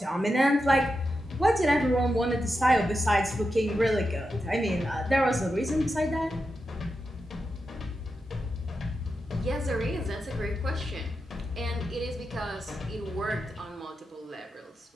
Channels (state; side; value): normal; both; correlation 0.88